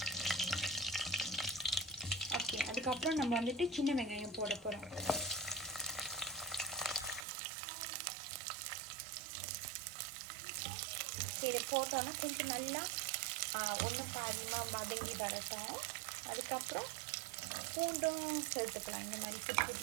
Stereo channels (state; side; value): drops out; left; at 7.2 s